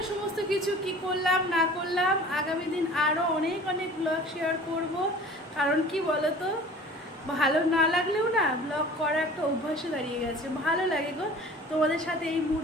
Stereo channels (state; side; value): normal; both; correlation 0.44